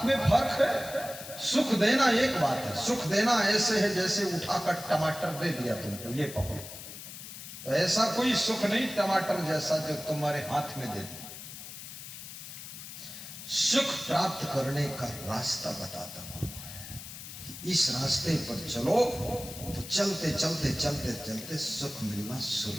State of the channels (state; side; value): noise; left; hiss, 12 dB below the sound